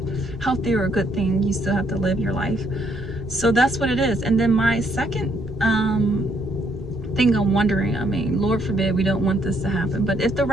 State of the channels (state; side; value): normal; both; correlation 0.71